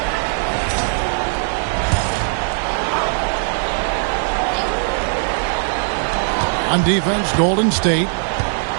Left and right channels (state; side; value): silent; left; 66 dB below the other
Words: On defense, Golden State.